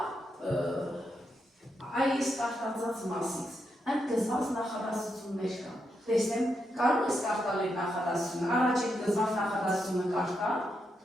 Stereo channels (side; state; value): both; normal; correlation 0.83